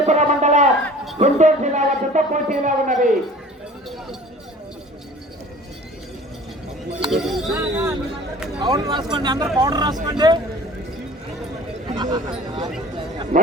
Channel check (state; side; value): normal; both; correlation 0.45